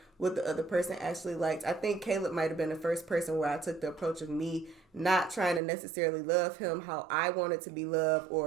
what the other person actually liked. I think Caleb might have been the first person where I took the approach of me not trying to necessarily love him how I wanted to be loved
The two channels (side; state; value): left; drops out; at 5.6 s